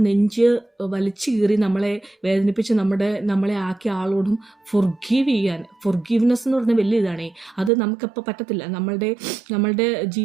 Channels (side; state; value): left; drops out; at 7.7 s